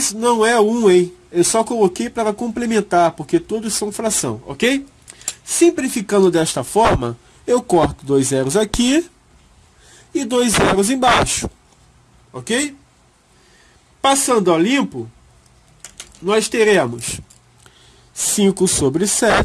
não é 1, hein? Eu só coloquei para complementar, porque todos são fração, ok? Simplificando desta forma, eu corto 2 zeros aqui e 2 zeros embaixo, ok? Passando a limpo, nós teremos 5 sobre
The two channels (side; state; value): both; identical; correlation 1.00